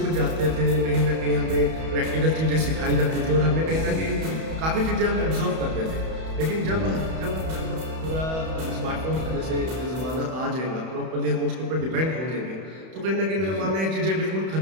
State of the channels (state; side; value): late; left; 31 ms